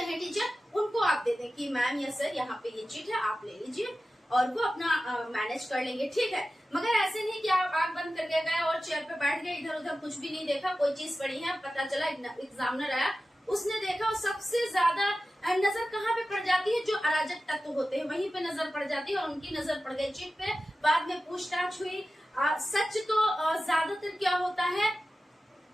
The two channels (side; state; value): both; normal; correlation 0.94